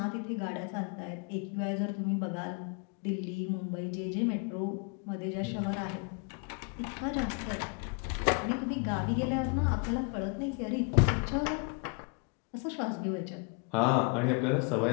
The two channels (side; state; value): right; quieter; 35.1 dB